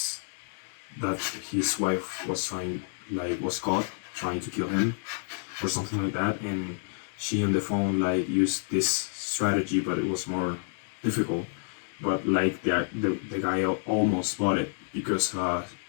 that his wife was caught trying to kill him or something like that, and she on the phone like used this strategy, but it was more difficult. But like the guy almost bought it, because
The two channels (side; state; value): right; silent; 59 dB below the other